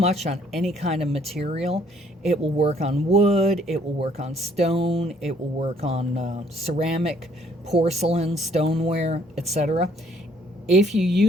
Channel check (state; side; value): normal; both; correlation 0.63